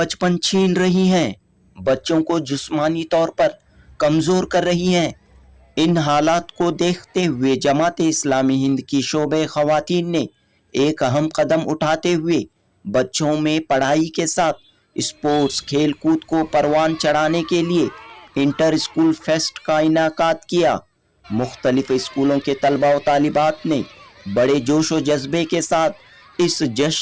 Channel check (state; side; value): identical; both; correlation 1.00